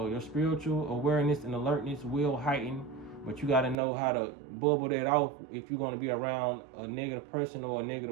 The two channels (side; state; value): left; drops out; at 3.8 s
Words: spiritual awareness and alertness will heighten, but you got to know how to bubble that off if you're going to be around a negative person or a